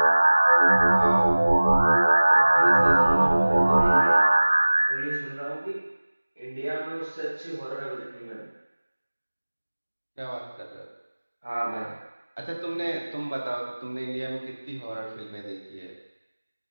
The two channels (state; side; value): inverted; both; correlation -1.00